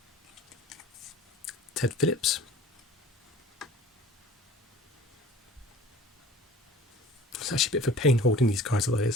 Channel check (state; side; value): normal; both; correlation 0.44